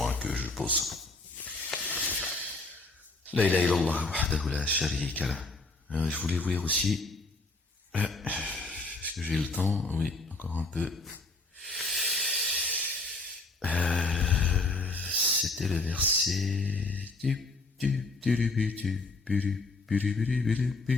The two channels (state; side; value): quieter; right; 3.2 dB